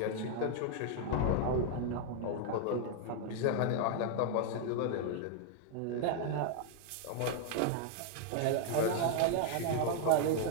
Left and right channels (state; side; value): different; both; correlation 0.00